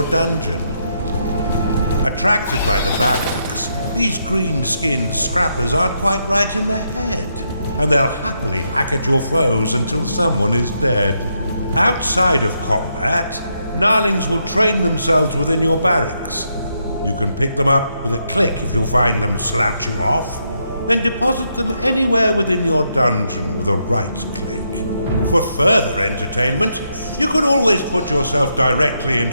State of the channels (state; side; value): inverted; both; correlation -0.79